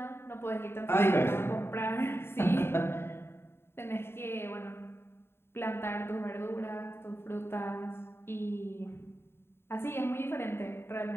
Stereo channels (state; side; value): late; right; 0.11 ms